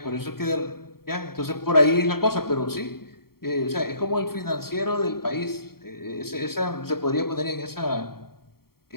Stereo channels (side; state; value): right; late; 0.94 ms